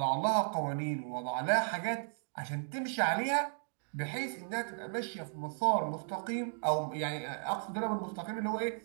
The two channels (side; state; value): left; silent; digital silence